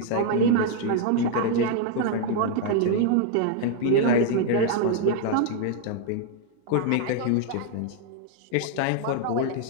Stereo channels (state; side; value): different; both; correlation 0.00